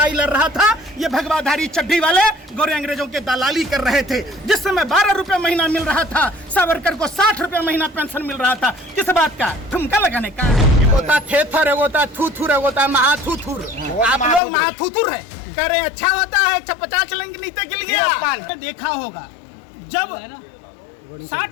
लड़ रहा था, ये भगवाधारी चड्डी वाले गोरे अंग्रेजों के दलाली कर रहे थे। जिस समय 12 रुपए महीना मिल रहा था, सावरकर को 60 रुपए महीना पेंशन मिल रहा था। किस बात का? ठुमका लगाने का। होता थेथर है, होता थूथुर है, होता महाथूथुर। आप लोग महाथूथुर है। कह रहे अच्छा होता है 150 चलेंगे नीचे गिर गया। देखा होगा जब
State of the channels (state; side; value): drops out; right; at 14.4 s